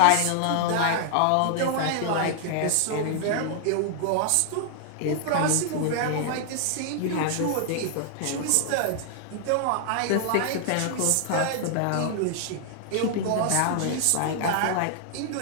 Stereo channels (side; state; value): both; different; correlation 0.00